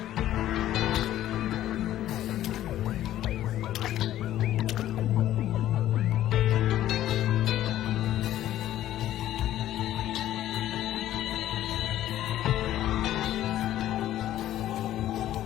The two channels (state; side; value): quieter; right; 13.0 dB